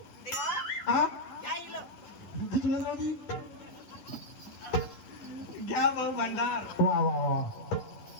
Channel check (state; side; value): late; right; 10 ms